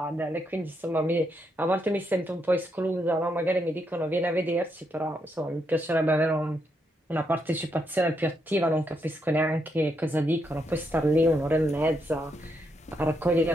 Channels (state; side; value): normal; both; correlation 0.79